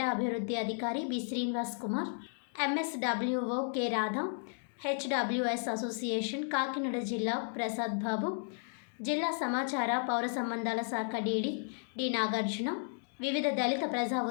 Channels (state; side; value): silent; right; digital silence